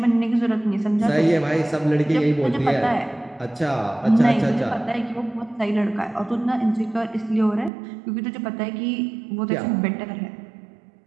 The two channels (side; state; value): left; drops out; at 7.7 s